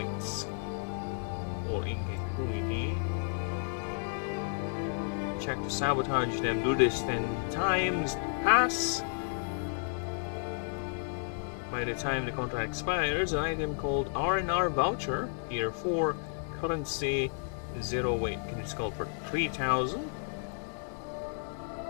or ingenuity. Check to sabotage them. Do this 10 times. Pass. By the time the contract expires, an item called R&R voucher, tier 4, currency 0 weight, can be called for 3,000.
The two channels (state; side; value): silent; right; 56 dB below the other